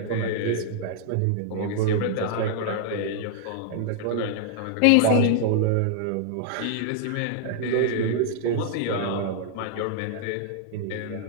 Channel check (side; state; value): both; different; correlation -0.01